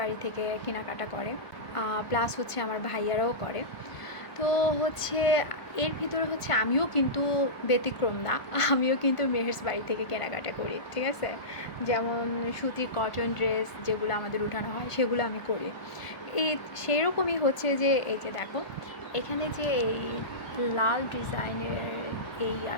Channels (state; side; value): late; right; 1.5 ms